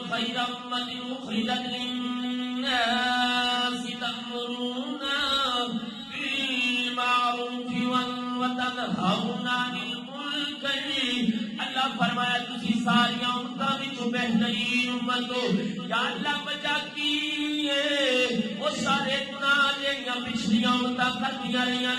خیر امت اخرجت للناس تأمرون بالمعروف وتنہون عن المنکر، اللہ فرمایا تسی ساری امتاں وچوں بہترین امت ہو۔ یا اللہ وجہ کی وہ سارے گناہ جہاں پچھلیاں امتاں کردیاں رہیاں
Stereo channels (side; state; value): both; identical; correlation 1.00